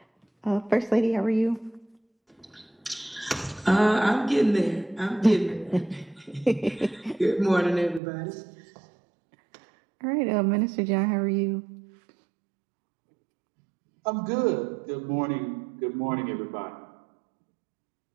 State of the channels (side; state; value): left; drops out; at 8.0 s